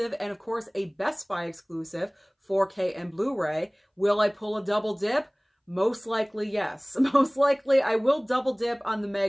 and, of course, a Best Buy exclusive, 4K and Blu-ray. Will I pull a double dip? Most likely, yes. Most likely, I will double dip on the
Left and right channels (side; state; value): both; identical; correlation 1.00